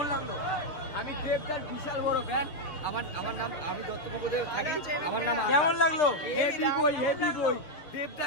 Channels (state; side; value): late; right; 6.7 ms